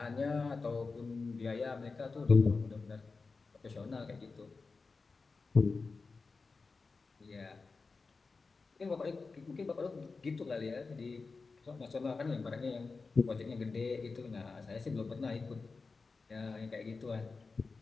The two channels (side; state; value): right; quieter; 4.2 dB